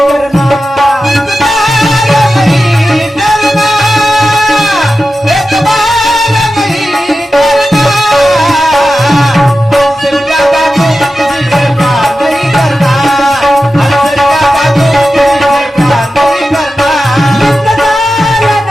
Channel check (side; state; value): both; normal; correlation 0.92